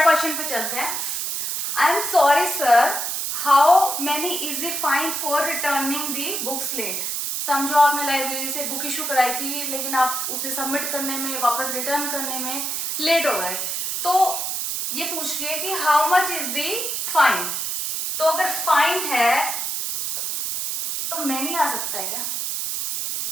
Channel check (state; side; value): noise; right; hiss, 2 dB below the sound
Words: क्वेश्चन पे चलते हैं। I am sorry sir, how many is the fine for returning the books late? समझो आपने लाइब्रेरी से बुक इशू कराई थी, लेकिन आप उसे सबमिट करने में, वापस रिटर्न करने में लेट हो गए। तो ये पूछ रही है कि how much is the fine. तो अगर फाइन है तो मैनी आ सकता है क्या?